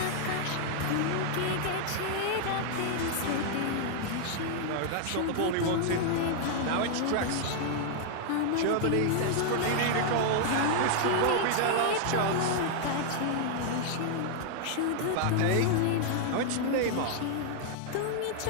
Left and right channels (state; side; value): different; both; correlation 0.00